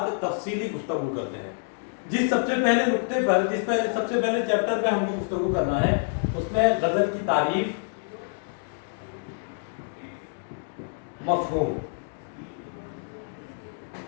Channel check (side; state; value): right; silent; digital silence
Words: تفصیلی گفتگو کرتے ہیں۔ جس سب سے پہلے نقطے پر سب سے پہلے چیپٹر پہ ہم کو گفتگو کرنا ہے، اس میں غزل کی تعریف، مفہوم۔